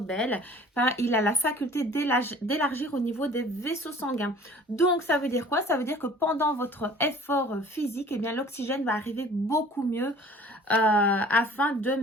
Enfin, il a la faculté d'élargir au niveau des vaisseaux sanguins. Donc ça veut dire quoi? Ça veut dire que pendant votre effort physique, eh bien l'oxygène va arriver beaucoup mieux afin de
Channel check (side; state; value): both; normal; correlation 0.49